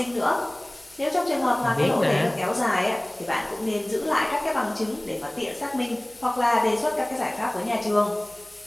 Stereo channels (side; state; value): left; noise; hum, 30 dB below the sound